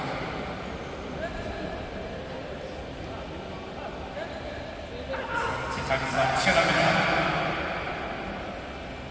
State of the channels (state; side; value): identical; both; correlation 1.00